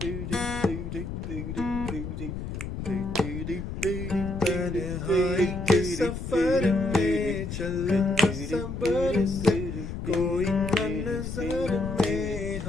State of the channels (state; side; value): noise; left; rumble, 6 dB below the sound